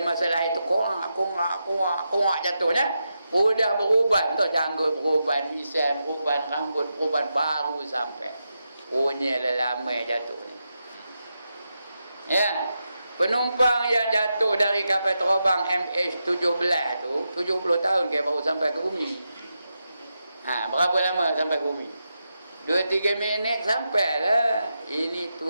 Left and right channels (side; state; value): both; inverted; correlation -0.87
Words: masalah itu kongak jatuhnya. Udah beruban tu, janggut beruban, misal beruban, rambut beruban, baru sampai. Punya lama jatuh ni. Ya. Penumpang yang jatuh dari kapal terbang MH17 tu 70 tahun ke baru sampai ke bumi. Berapa lama sampai ke bumi? 2-3 minit sampai lah. Ini